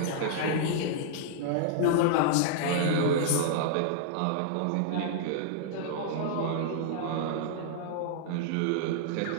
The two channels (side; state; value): both; different; correlation -0.01